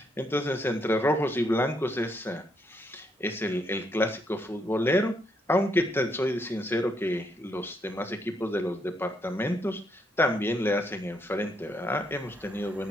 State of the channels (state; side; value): normal; both; correlation 0.75